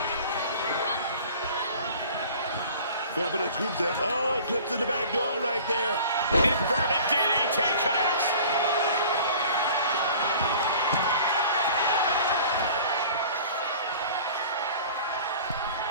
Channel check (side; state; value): both; inverted; correlation -0.45